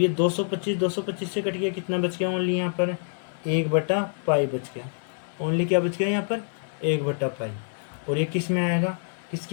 ये 225 से कट गया, कितना बच गया ओनली यहाँ पर 1/पाई बच गया, ओनली क्या बच गया यहाँ पर 1/पाई। और ये किस में आएगा,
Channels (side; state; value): right; silent; 61 dB below the other